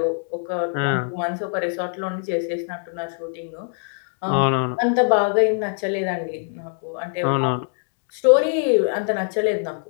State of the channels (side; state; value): right; silent; 62 dB below the other